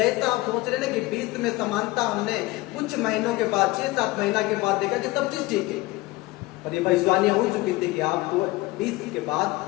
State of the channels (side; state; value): right; quieter; 20.0 dB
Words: आप सोच रहे ना कि 20 में समानता, हमने कुछ महीनों के बाद, 6-7 महीना के बाद देखा कि सब चीज ठीक है। पर ये भविष्यवाणियां हो चुकी थी कि आपको 20 के